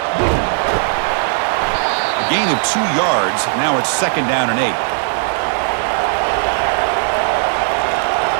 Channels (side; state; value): left; silent; digital silence